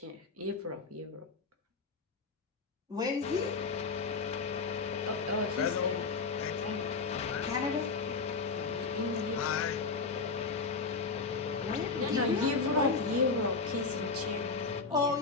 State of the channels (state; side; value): quieter; right; 4.5 dB